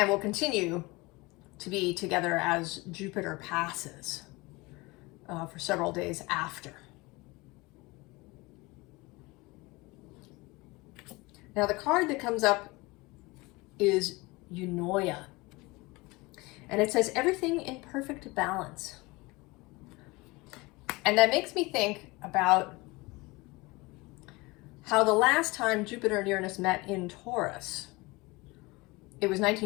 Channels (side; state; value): right; quieter; 23.4 dB